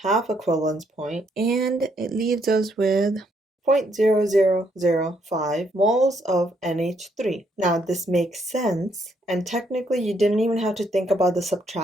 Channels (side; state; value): both; normal; correlation 0.72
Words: equivalence point, and it leaves us with 0.0005 moles of NH3. Now this makes sense, and technically you didn't even have to think about the